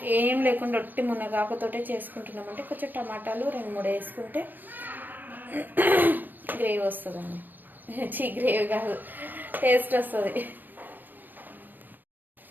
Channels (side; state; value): left; late; 0.091 ms